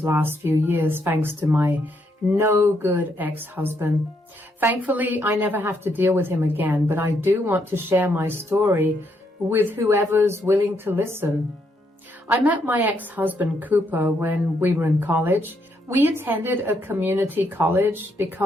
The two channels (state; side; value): normal; both; correlation 0.76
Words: last few years thanks to my no good ex-husband. Thankfully, I never have to deal with him again, but I do want to share my story with whoever's willing to listen. I met my ex-husband Cooper when we were in college. We attended a community college